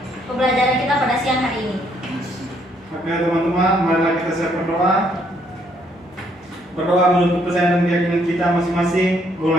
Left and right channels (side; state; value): both; normal; correlation 0.69